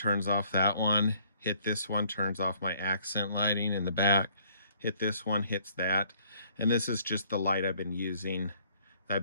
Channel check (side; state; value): both; inverted; correlation -0.62